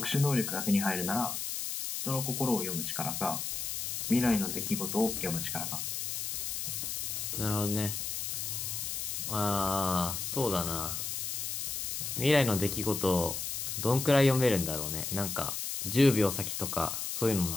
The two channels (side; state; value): left; noise; hiss, 3 dB below the sound